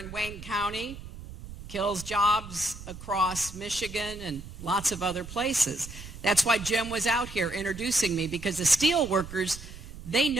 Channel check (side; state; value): right; noise; rumble, 13 dB below the sound